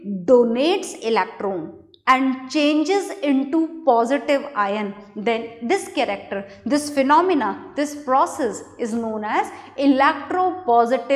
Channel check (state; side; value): identical; both; correlation 1.00